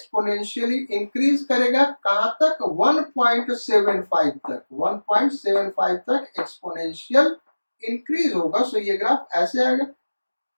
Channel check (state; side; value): inverted; both; correlation -1.00